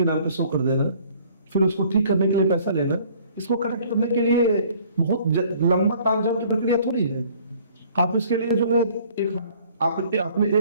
नाम पे शो कर देना, फिर उसको ठीक करने के लिए पैसा लेना, इसको करेक्ट करने के लिए बहुत लंबा तालझाम की प्रक्रिया थोड़ी है। आप इसके लिए जो है आपने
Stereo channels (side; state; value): both; inverted; correlation -0.56